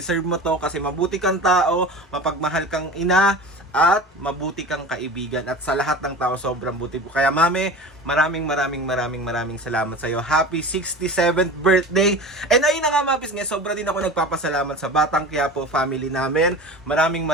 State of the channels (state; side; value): normal; both; correlation 0.35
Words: mo to kasi mabuti kang tao, mapagmahal kang ina, at mabuti kang kaibigan. At sa lahat ng tao, sobrang buti po. Kaya Mami, maraming salamat sa'yo. Happy 67th birthday! And ayun na nga mga pisngi, sobra din ako nagpapasalamat sa Batang Quiapo family namin. Maraming